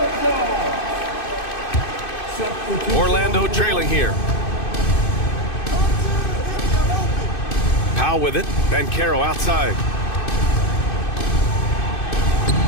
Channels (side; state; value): right; late; 2.6 ms